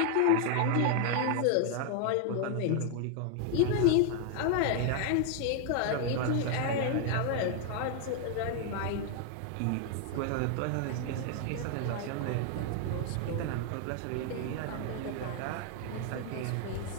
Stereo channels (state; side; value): different; both; correlation 0.00